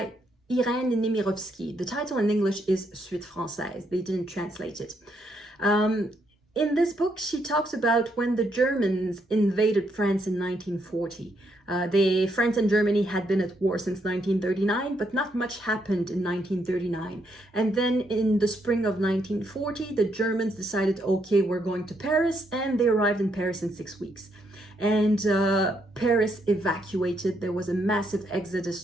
Irène Nemirovsky. The title in English is Suite Française. They didn't translate it. In this book, she talks about when the Germans invaded France in 1940. France and Germany had been at war since 1939, but not much happened in 1939. And then in the spring of 1940, the Germans decided, okay, we're going to Paris, and they arrived in Paris in 6 weeks. And Paris evacuated. There was a massive exodus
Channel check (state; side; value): normal; both; correlation 0.76